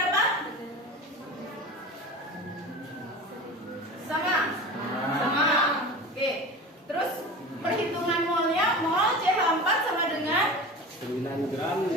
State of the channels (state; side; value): normal; both; correlation 0.33